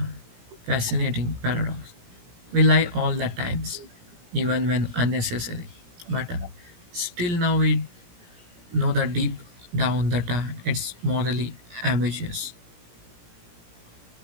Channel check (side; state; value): left; late; 17 ms